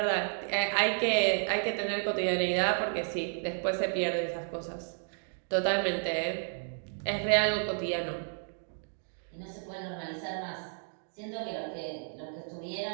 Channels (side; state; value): left; silent; 56 dB below the other